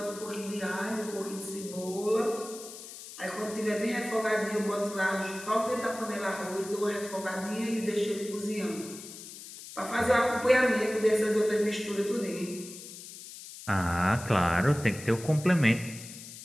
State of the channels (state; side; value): noise; left; hiss, 13 dB below the sound